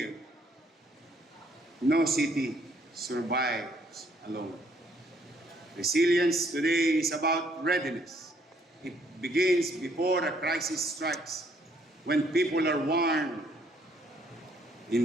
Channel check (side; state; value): both; normal; correlation 0.66